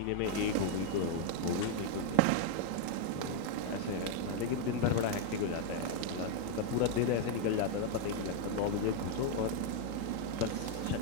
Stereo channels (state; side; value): different; both; correlation 0.00